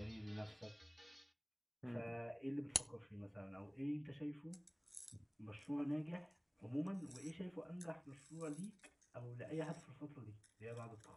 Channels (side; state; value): both; identical; correlation 1.00